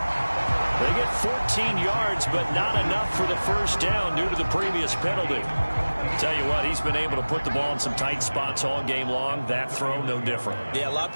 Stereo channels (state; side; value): inverted; both; correlation -1.00